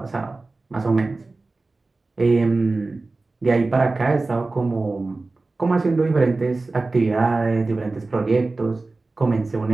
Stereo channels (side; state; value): left; quieter; 3.4 dB